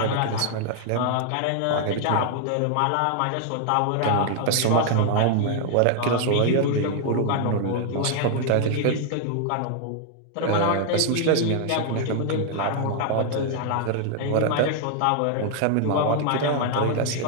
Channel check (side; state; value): both; different; correlation 0.00